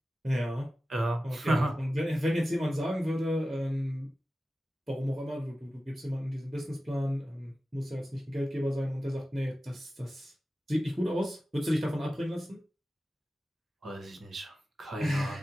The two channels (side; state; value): both; normal; correlation 0.94